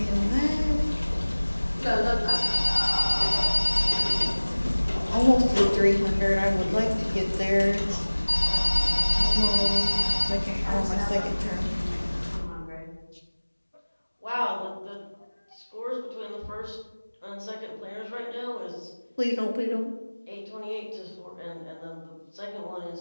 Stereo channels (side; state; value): both; inverted; correlation -1.00